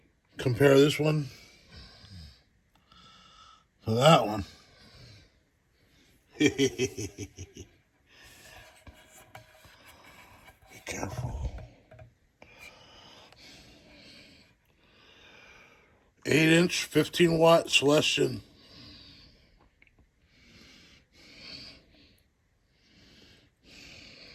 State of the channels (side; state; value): both; identical; correlation 1.00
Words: Compare this one to that one. Be careful. 8-inch, 15-watt Celestion.